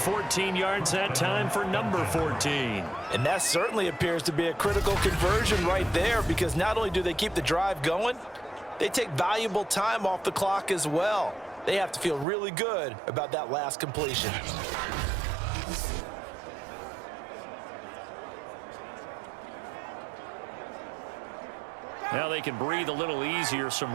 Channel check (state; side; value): drops out; left; at 12.2 s